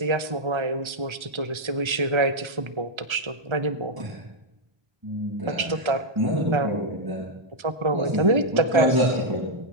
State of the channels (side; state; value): left; late; 1.3 ms